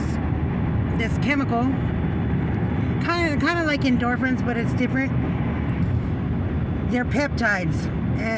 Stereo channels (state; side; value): identical; both; correlation 1.00